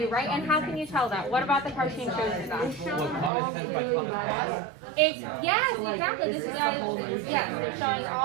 right? And how can you tell that? What about the cartoon shows you that? Yes, exactly. This guy, yes, they're showing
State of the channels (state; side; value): drops out; left; at 3.3 s